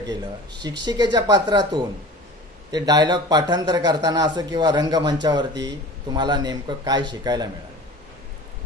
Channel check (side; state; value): both; normal; correlation 0.39